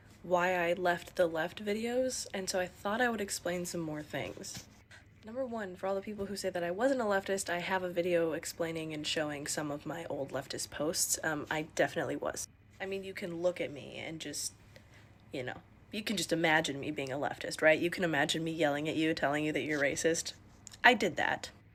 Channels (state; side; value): identical; both; correlation 1.00